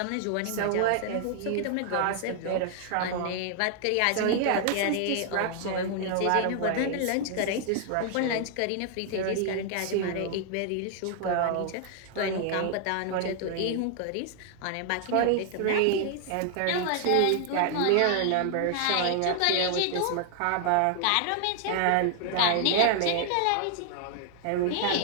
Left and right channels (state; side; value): different; both; correlation 0.00